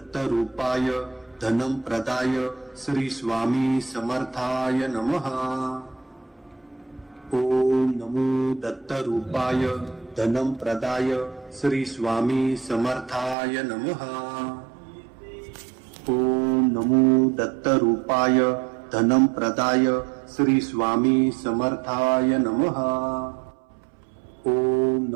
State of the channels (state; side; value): drops out; left; at 13.4 s